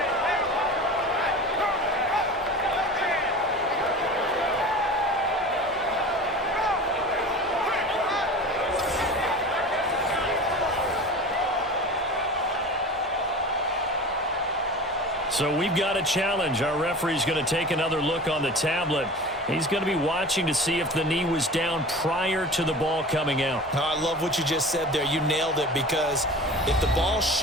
So we've got a challenge. Our referee's going to take another look on the tablet. He's going to be watching to see if the knee was down prior to the ball coming out. I love what you just said there. You nailed it, because if the ball's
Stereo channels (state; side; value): normal; both; correlation 0.35